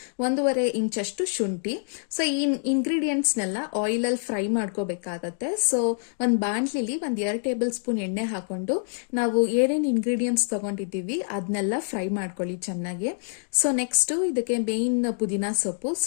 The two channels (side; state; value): right; silent; digital silence